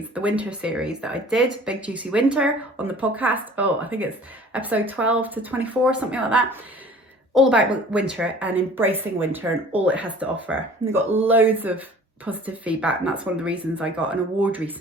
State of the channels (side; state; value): both; normal; correlation 0.48